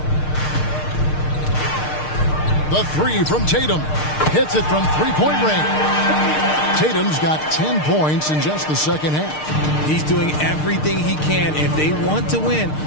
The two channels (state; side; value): late; right; 6.6 ms